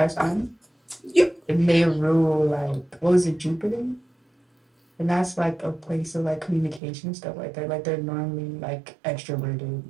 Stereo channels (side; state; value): left; drops out; at 6.8 s